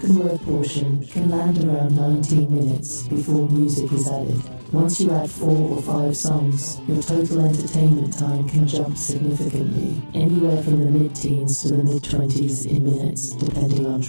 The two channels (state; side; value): inverted; both; correlation -1.00